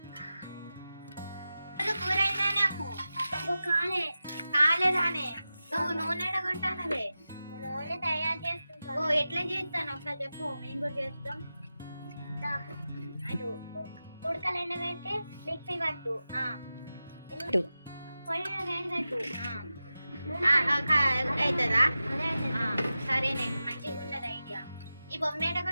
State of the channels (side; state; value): both; inverted; correlation -0.93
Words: కూర అయిందానే అమ్ము కాలేదానే నువ్వు నూనె కొంటానవే నూనె తయారు చేస్తుంటా ఓ ఎట్లా చేస్తాను ఒకసారి చెప్పు మేము కూడా చేస్తాం ఉడకలు ఎండబెట్టి మిక్సీ పట్టు పొయ్యి వేడి పెట్టు అవుతుందా సరేనే మంచిగా ఉన్నది ఐడియా ఈ బొమ్మ ఎట